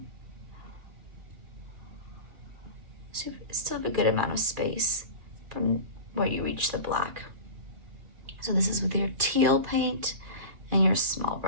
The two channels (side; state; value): left; late; 2.4 ms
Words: So you still have a good amount of space from where you reach the black. So this is with your teal paint and your small